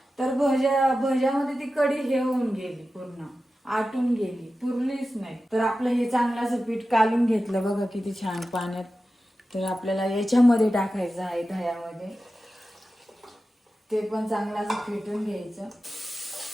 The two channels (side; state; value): both; normal; correlation 0.93